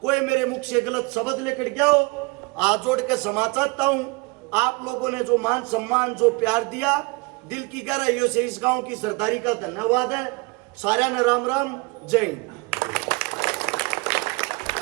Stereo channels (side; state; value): left; quieter; 27.7 dB